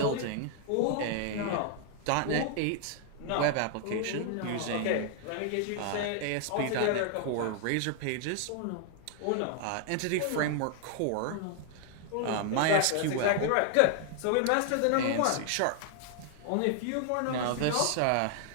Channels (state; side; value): different; both; correlation 0.00